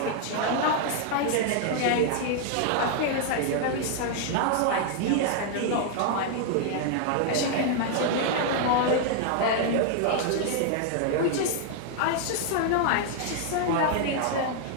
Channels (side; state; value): both; different; correlation 0.00